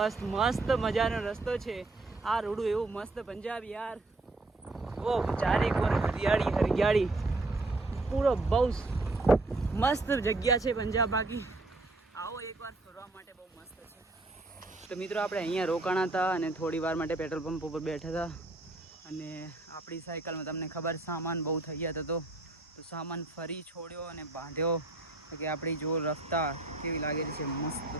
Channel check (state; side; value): quieter; left; 3.0 dB